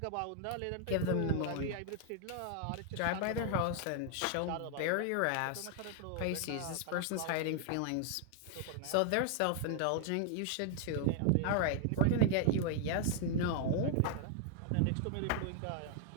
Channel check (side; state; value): both; different; correlation 0.00